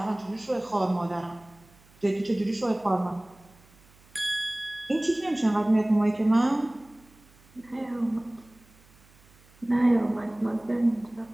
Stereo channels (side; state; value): right; noise; hum, 28 dB below the sound